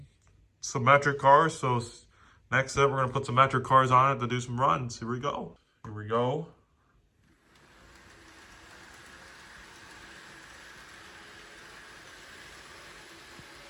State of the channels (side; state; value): both; identical; correlation 1.00